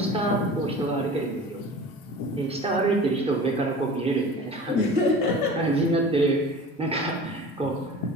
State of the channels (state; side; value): normal; both; correlation 0.39